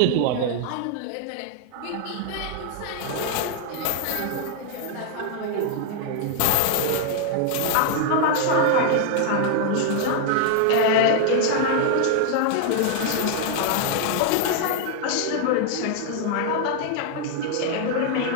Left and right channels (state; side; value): different; both; correlation 0.00